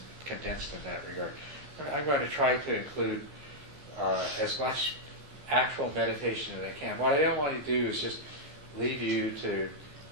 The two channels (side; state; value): left; late; 14 ms